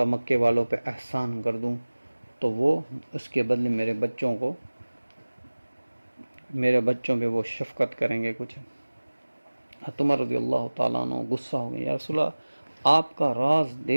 مکے والوں پہ احسان کر دوں تو وہ اس کے بدلے میرے بچوں پہ وہ شفقت کریں گے کچھ۔ عمر رضی اللہ تعالیٰ عنہ غصہ ہو گئے، یا رسول اللہ آپ کا راز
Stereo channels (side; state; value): both; inverted; correlation -1.00